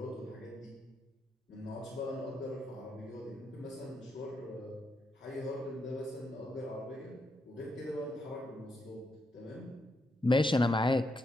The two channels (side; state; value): both; normal; correlation 0.80